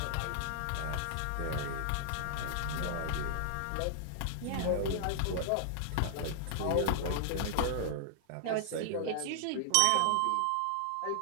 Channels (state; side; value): different; both; correlation -0.01